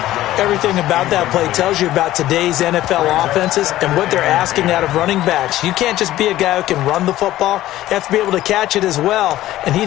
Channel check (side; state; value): right; quieter; 14.8 dB